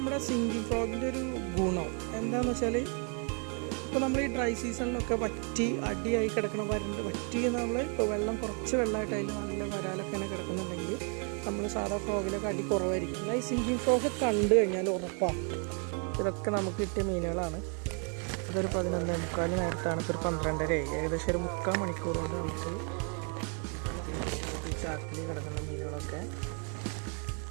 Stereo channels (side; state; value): left; quieter; 38.0 dB